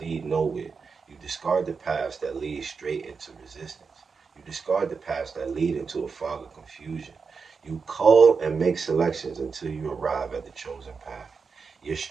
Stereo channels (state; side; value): quieter; left; 5.2 dB